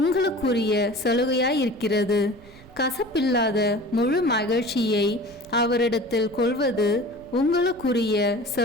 சலுகையாயிருக்கிறது. கசப்பில்லாத முழு மகிழ்ச்சியை அவரிடத்தில் கொள்வது உங்களுக்குரிய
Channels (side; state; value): right; noise; rumble, 23 dB below the sound